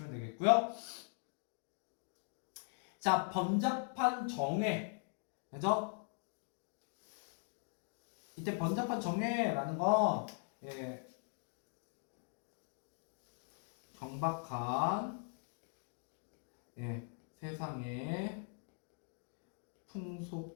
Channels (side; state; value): right; silent; 51 dB below the other